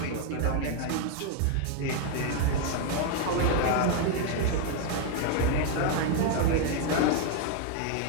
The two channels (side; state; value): both; different; correlation 0.00